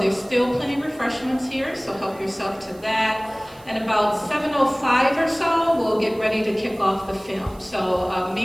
still plenty of refreshments here, so help yourself to that. And about 7:05 or so, we'll get ready to kick off the film. So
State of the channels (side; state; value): right; noise; hiss, 26 dB below the sound